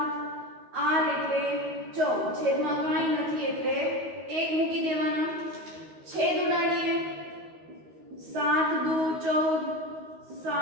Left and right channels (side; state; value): left; late; 13 ms